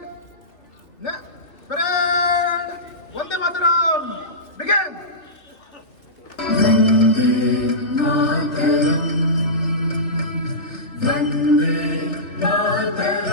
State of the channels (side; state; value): right; late; 2.8 ms